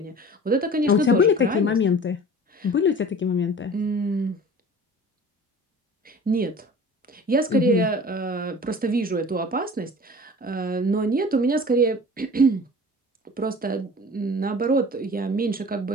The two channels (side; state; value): both; normal; correlation 0.42